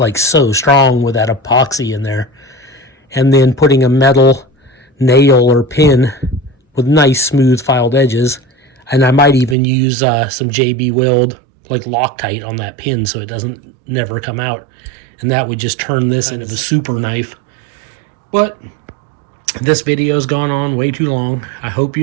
so strong with that epoxy in there. And then putting a metal nail or pin with nice smooth filed edges, and I might even use some JB Weld like Loctite on that pin so it doesn't never come out, and that would just turn this into the super knife. But this video's gone on way too long. I hope you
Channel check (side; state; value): left; drops out; at 9.6 s